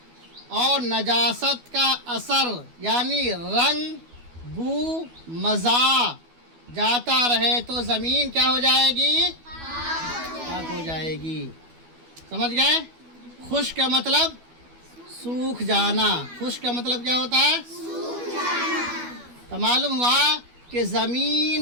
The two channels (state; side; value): late; left; 12 ms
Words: اور نجاست کا اثر یعنی رنگ، بو، مزہ جاتا رہے تو زمین کیا ہو جائے گی؟ پاک ہو جائے گی۔ سمجھ گئے؟ خشک کا مطلب سوکھ جانا۔ خشک کا مطلب کیا ہوتا ہے؟ تو معلوم ہوا کہ